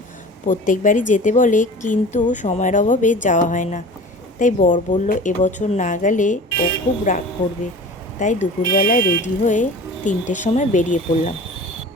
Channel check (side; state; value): both; normal; correlation 0.39